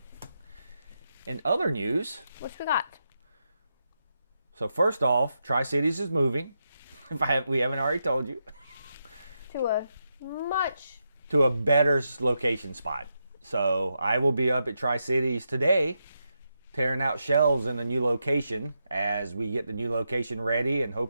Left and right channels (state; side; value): inverted; both; correlation -0.85